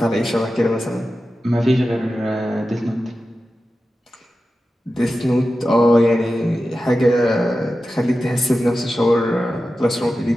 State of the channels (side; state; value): both; normal; correlation 0.93